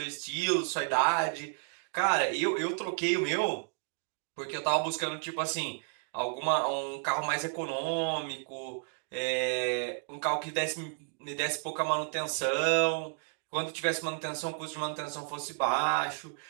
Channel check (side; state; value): left; silent; 56 dB below the other